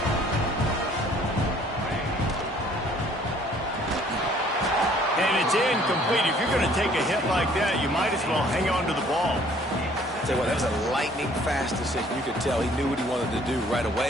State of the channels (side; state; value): both; normal; correlation 0.58